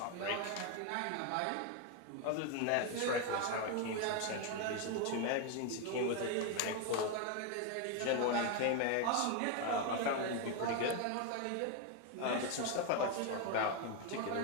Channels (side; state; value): both; different; correlation 0.01